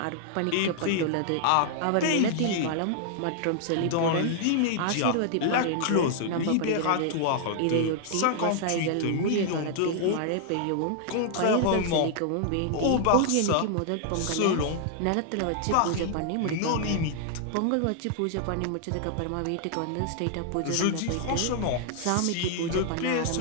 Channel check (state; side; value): different; both; correlation -0.01